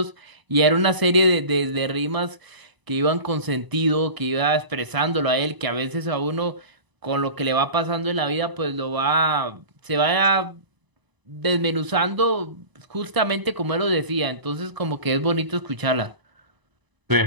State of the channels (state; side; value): late; left; 1.0 ms